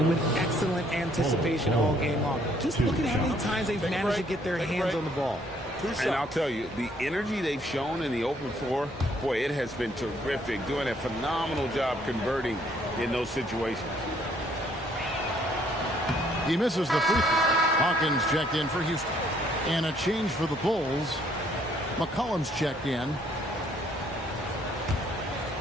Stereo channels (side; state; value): both; normal; correlation 0.65